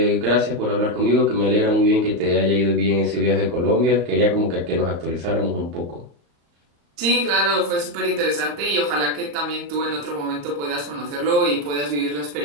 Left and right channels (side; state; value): left; late; 35 ms